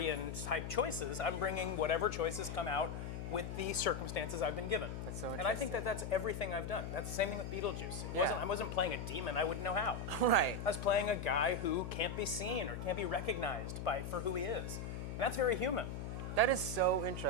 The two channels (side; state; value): left; noise; hum, 6 dB below the sound